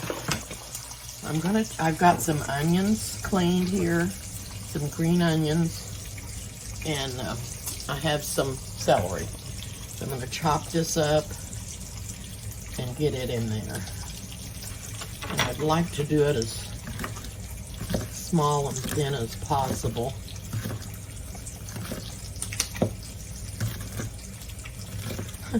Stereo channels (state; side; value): identical; both; correlation 1.00